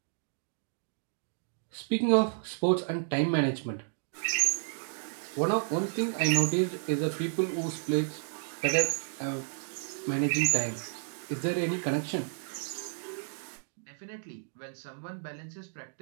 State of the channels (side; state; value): left; silent; digital silence